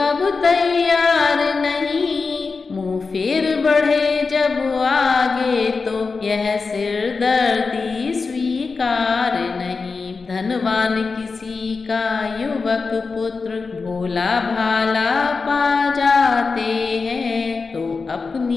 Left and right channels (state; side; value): quieter; right; 4.5 dB